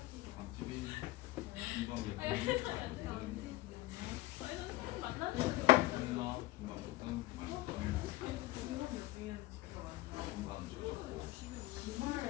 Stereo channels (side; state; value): right; quieter; 17.9 dB